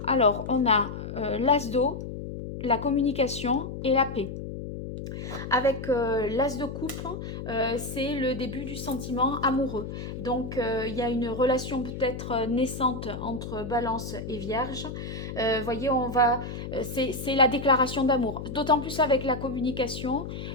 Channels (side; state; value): left; noise; hum, 8 dB below the sound